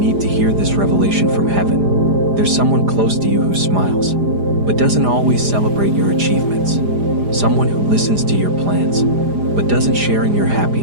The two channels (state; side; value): late; left; 4.9 ms